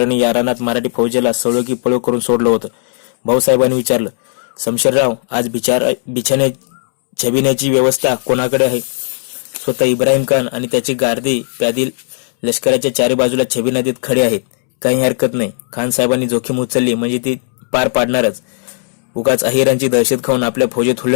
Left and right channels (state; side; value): silent; right; 70 dB below the other